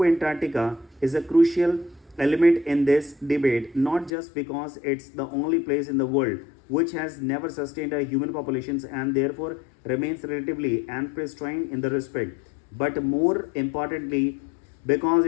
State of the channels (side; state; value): right; drops out; at 4.1 s